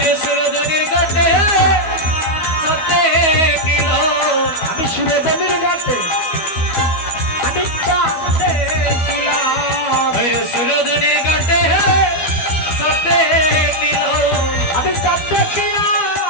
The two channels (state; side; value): late; right; 12 ms